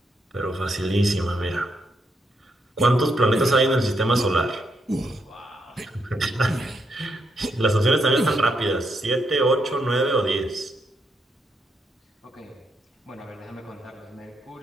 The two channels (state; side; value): normal; both; correlation 0.79